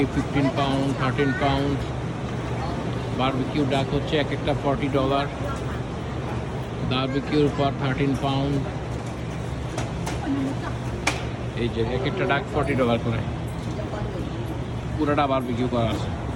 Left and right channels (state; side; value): identical; both; correlation 1.00